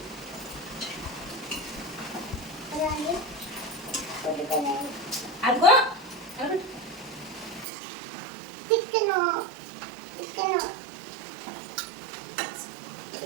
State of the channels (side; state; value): left; drops out; at 7.7 s